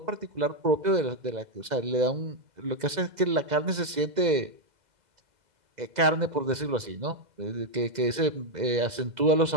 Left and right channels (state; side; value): late; left; 2.0 ms